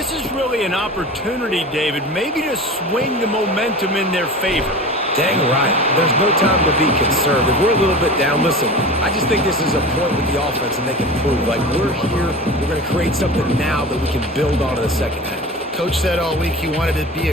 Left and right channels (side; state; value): both; normal; correlation 0.33